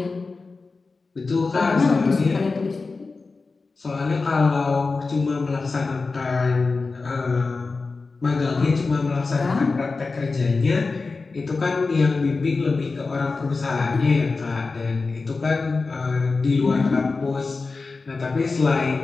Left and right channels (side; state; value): right; quieter; 4.0 dB